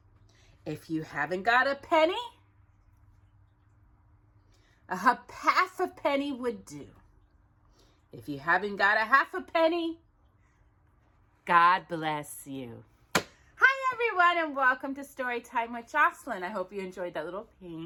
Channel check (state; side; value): identical; both; correlation 1.00